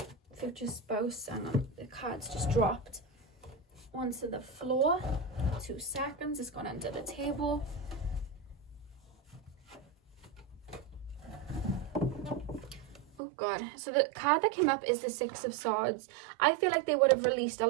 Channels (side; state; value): left; drops out; at 13.2 s